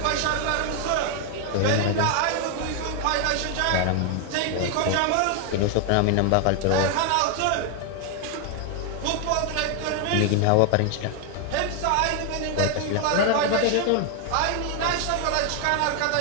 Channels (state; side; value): different; both; correlation 0.00